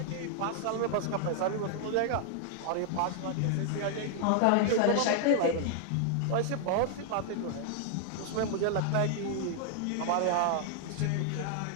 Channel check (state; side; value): different; both; correlation 0.00